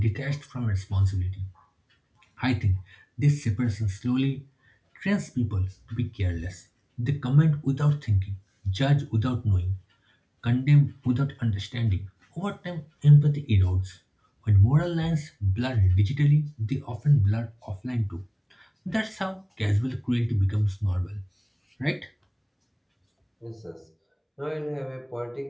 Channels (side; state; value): both; identical; correlation 1.00